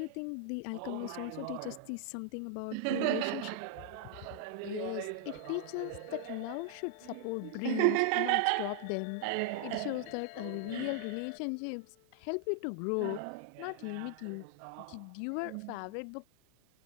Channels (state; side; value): different; both; correlation -0.01